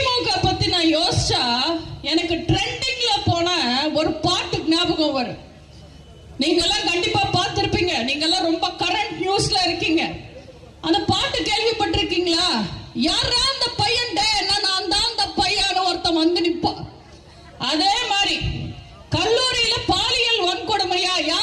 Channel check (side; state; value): both; identical; correlation 1.00